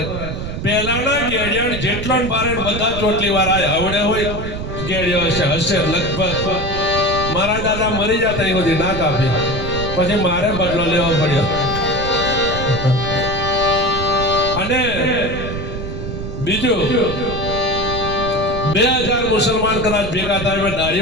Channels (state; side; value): noise; right; rumble, 6 dB below the sound